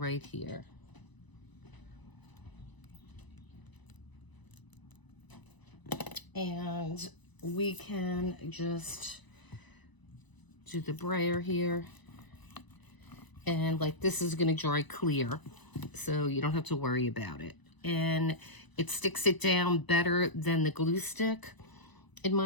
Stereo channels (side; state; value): right; late; 1.0 ms